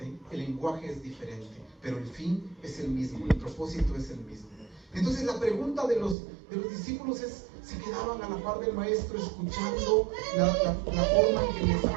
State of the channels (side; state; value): left; drops out; at 6.2 s